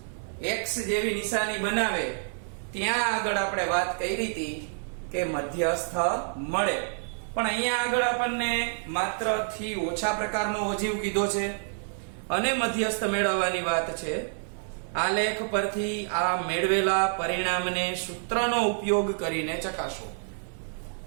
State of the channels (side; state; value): left; silent; 59 dB below the other